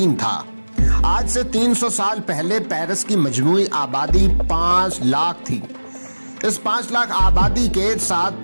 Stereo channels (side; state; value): both; inverted; correlation -1.00